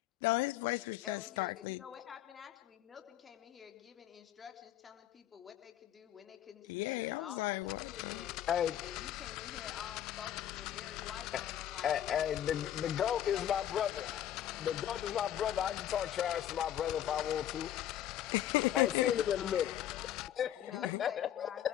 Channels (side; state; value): right; quieter; 11.3 dB